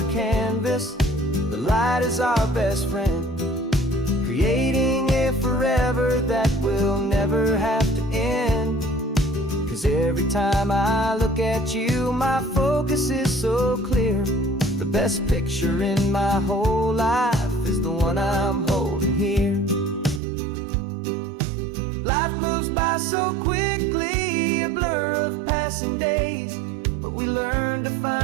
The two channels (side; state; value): left; drops out; at 20.2 s